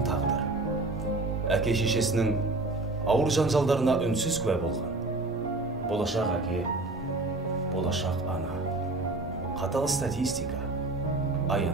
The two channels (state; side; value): quieter; left; 3.1 dB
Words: тағдыр. Әке шешесінің ауыр жанжалдарына үнсіз куә болған. Болашақ әке, болашақ ана. Қатал статистика,